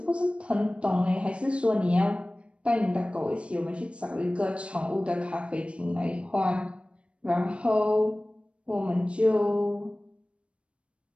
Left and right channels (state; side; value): late; left; 0.059 ms